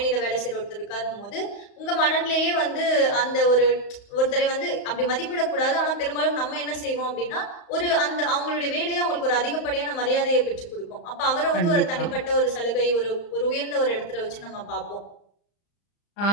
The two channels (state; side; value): late; right; 35 ms